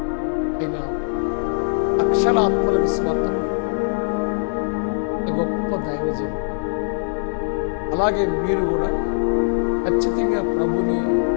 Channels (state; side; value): silent; right; 64 dB below the other